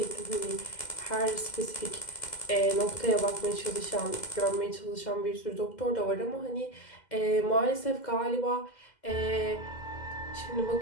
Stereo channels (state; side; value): late; right; 2.1 ms